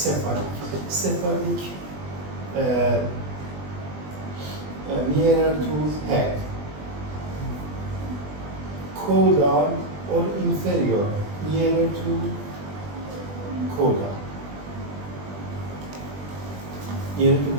Cephalic, nearer to head. Caudal or inferior, nearer to caudal, near to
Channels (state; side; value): late; left; 20 ms